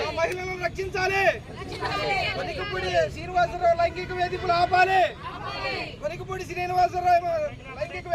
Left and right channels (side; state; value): both; identical; correlation 1.00